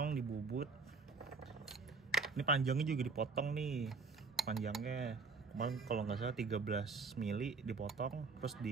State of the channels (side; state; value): left; quieter; 4.5 dB